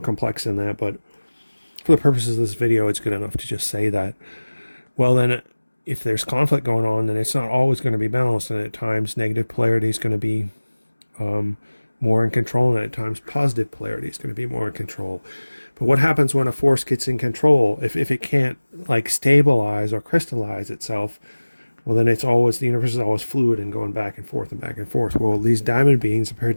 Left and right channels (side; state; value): both; inverted; correlation -1.00